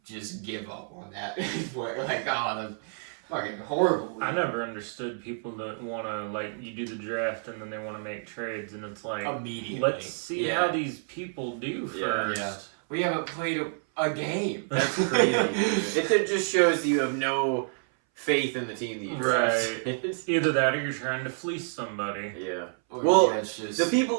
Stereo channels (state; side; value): silent; left; 59 dB below the other